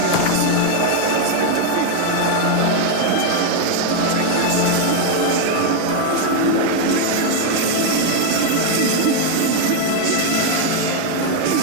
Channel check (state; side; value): different; both; correlation 0.00